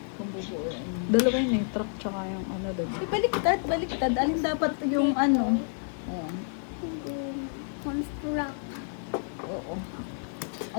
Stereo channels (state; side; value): silent; right; 58 dB below the other